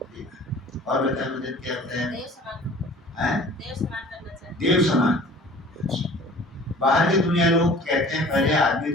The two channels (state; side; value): normal; both; correlation 0.47